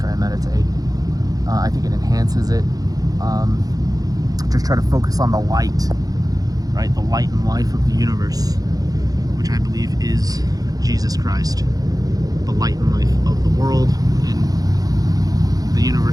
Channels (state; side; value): late; left; 0.18 ms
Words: I meditate. I think it enhances it. Just try to focus on the light, right? The light and life of the universe, which I believe is Jesus Christ, the light and life of the world and the